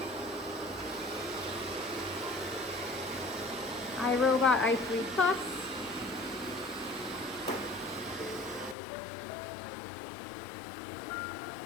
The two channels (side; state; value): right; drops out; at 8.8 s